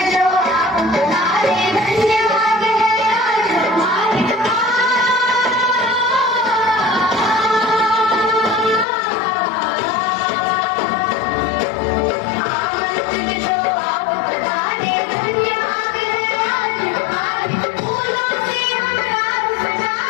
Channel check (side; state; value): right; drops out; at 8.8 s